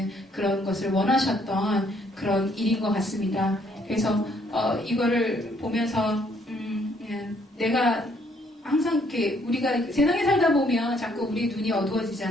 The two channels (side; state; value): both; normal; correlation 0.67